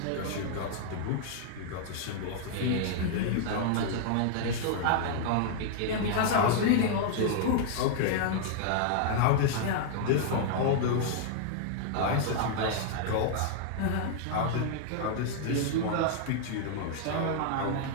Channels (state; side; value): different; both; correlation -0.01